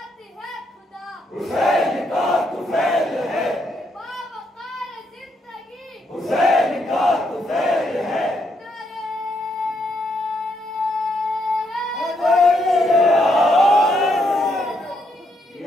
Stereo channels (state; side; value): normal; both; correlation 0.76